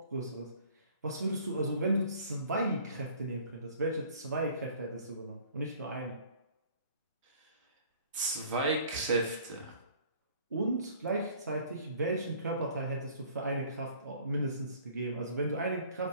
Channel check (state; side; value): inverted; both; correlation -0.52